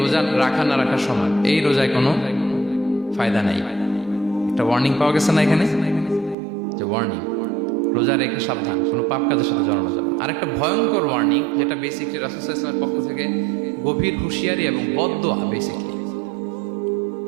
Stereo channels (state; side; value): drops out; left; at 6.4 s